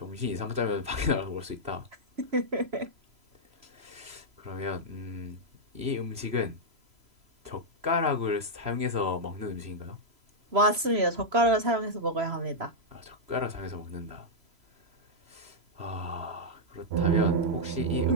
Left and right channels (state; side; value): late; left; 3.0 ms